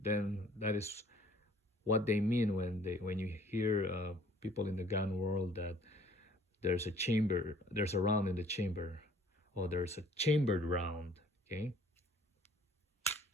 that is what they mean when you hear people in the gun world that there's a round in the chamber, or there's a chambered round. Okay.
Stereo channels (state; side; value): normal; both; correlation 0.56